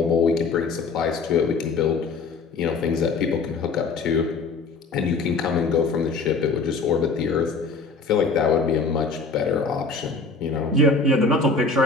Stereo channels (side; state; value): right; quieter; 4.2 dB